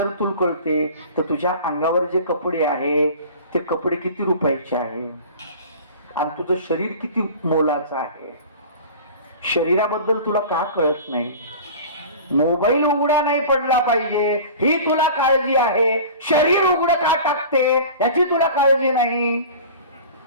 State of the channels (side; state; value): both; inverted; correlation -0.39